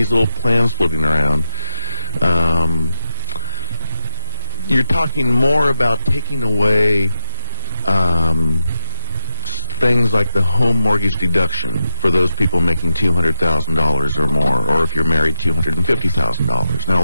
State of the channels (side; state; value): both; inverted; correlation -0.98